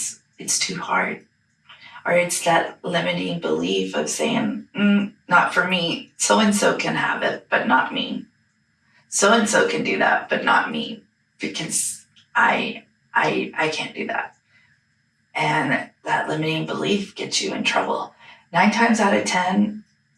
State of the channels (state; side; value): identical; both; correlation 1.00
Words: it's too hard. Or it's that limiting belief of saying, not for me. So-and-so can have it, but not me. So-and-so can do that, but not me. Because I can't do that. And that limiting belief gets you in trouble. 9 times out of 10,